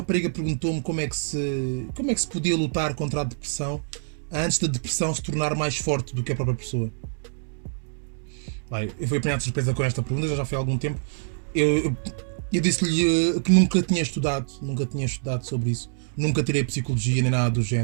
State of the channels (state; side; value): silent; left; digital silence